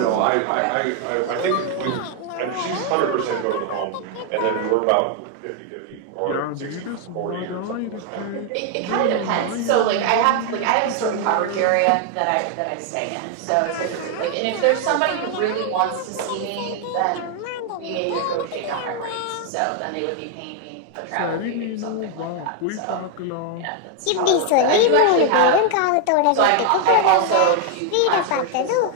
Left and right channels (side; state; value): both; different; correlation 0.00